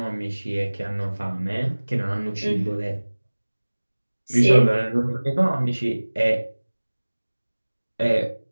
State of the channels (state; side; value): inverted; both; correlation -1.00